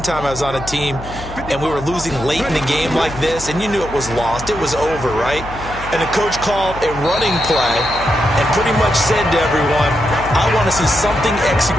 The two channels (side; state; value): left; noise; hum, 13 dB below the sound